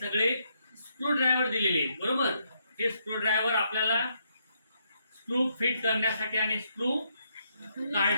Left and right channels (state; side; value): inverted; both; correlation -0.76